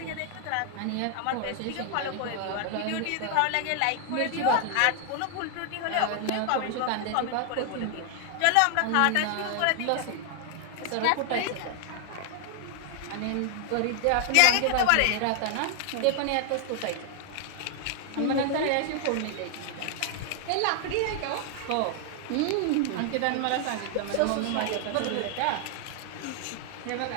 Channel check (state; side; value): different; both; correlation 0.00